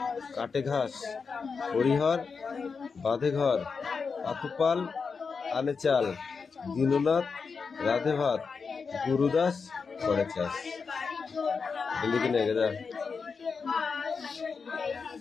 কাটে ঘাস হরিহর বাঁধে ঘর পাতুপাল আনে চাল দীননাথ রাধে ভাত গুরুদাস করে চাষ লিখে নে গেদা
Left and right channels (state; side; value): quieter; right; 5.2 dB